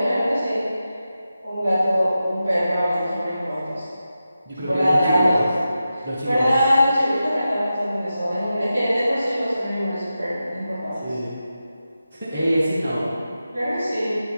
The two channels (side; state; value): both; inverted; correlation -0.91